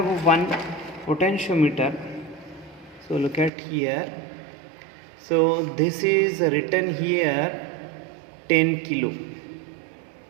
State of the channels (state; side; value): drops out; left; at 3.5 s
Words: one potentiometer, so look at here. So this is written here 10 kilo.